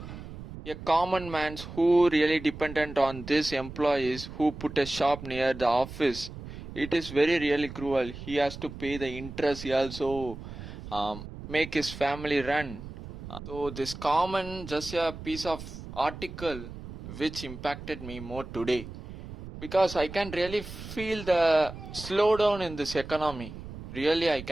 a common man's who really dependent on these employees who put a shop near the office, it is very really cruel. He has to pay the interest. He also make his family run. So this common just a piece of article which impacted me more today because I can really feel the slowdown in this economy. Really, I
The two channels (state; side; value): noise; right; rumble, 12 dB below the sound